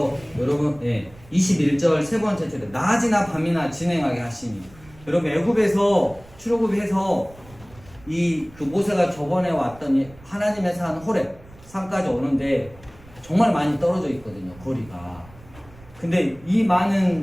여러분 21절 세 번째 줄에 낮이나 밤이나 진행하게 하시니 여러분 애굽에서 출애굽해서 이 그 모세가 저번에 왔더니 하나님의 산 호렙 산까지 오는데 정말 많이 떨어져 있거든요 거리가. 근데 이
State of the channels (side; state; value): right; noise; rumble, 23 dB below the sound